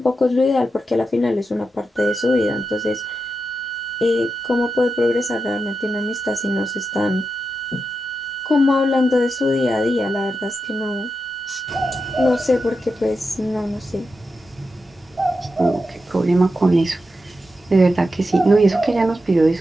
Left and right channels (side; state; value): both; normal; correlation 0.88